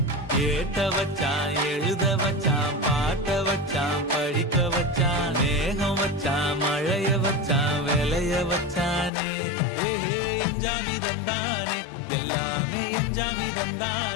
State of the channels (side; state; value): right; drops out; at 9.1 s